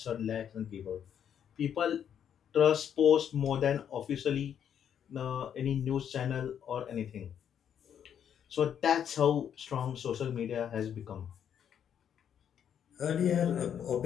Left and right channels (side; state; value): right; quieter; 8.8 dB